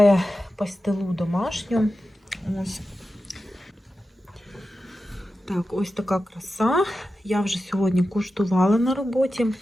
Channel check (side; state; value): both; normal; correlation 0.92